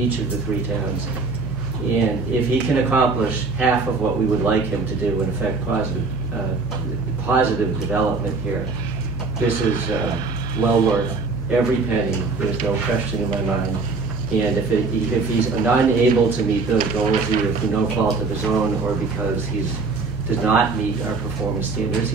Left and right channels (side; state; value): left; quieter; 4.1 dB